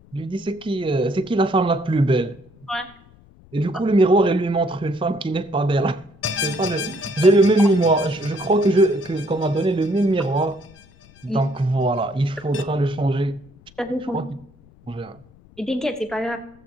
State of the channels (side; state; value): left; noise; rumble, 26 dB below the sound